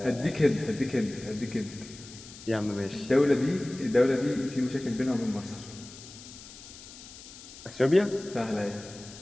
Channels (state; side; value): noise; left; hiss, 16 dB below the sound